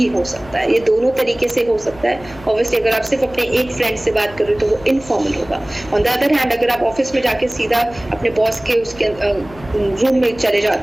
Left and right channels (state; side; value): noise; left; hum, 20 dB below the sound